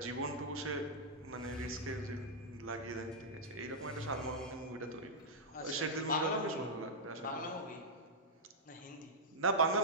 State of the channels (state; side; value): normal; both; correlation -0.08